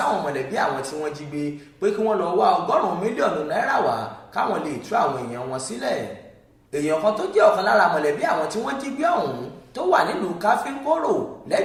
mọ̀lẹ́bí àwọn tí wọ́n jí gbé pé kí wọ́n lọ wá 100 mílíọ̀nù náírà wá káwọn lè tú àwọn èèyàn wọn sílẹ̀. Èèyàn kan tó jẹ́ ọ̀kan lára mọ̀lẹ́bí àwọn tí wọ́n jí gbé ọ̀hún tó wà nílùú Káfíńkóró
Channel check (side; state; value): both; identical; correlation 1.00